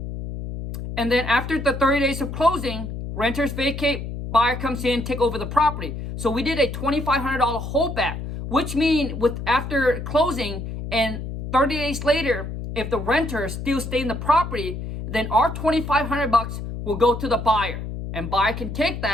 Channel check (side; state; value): left; noise; hum, 7 dB below the sound